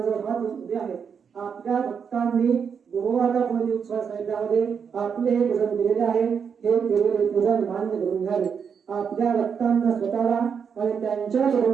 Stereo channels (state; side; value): quieter; left; 6.7 dB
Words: हात उभे आहेत आपल्या भक्तांनी गुरुवारा मध्ये उत्सव साहित्यामध्ये आपले हे भजन केलेले आहे हे केलेले पूजन मान्य करून घ्यावे आपल्या भक्तांना स्वतःला आणि त्यांच्या